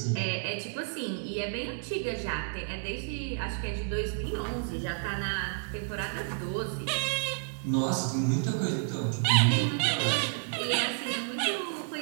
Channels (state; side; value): silent; left; digital silence